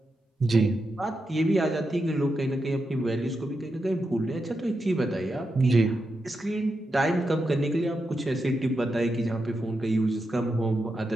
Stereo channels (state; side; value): normal; both; correlation 0.87